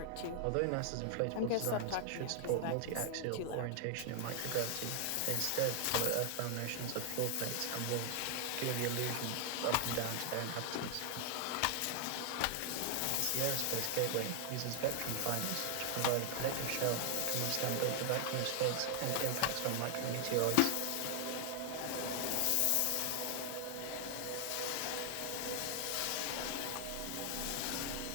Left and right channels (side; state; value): both; different; correlation 0.00